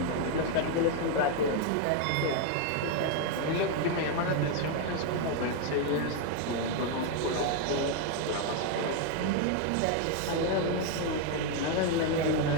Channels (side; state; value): both; different; correlation 0.01